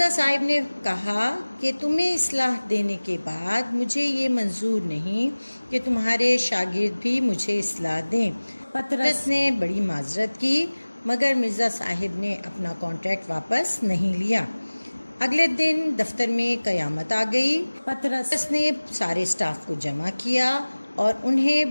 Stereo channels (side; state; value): both; inverted; correlation -1.00